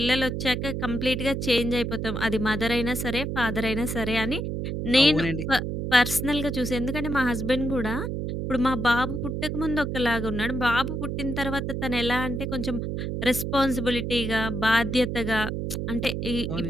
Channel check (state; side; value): noise; right; hum, 3 dB below the sound